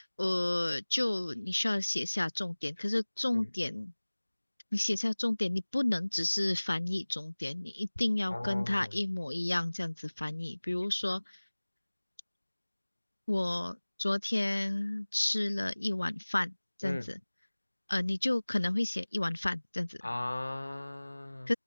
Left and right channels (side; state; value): both; inverted; correlation -1.00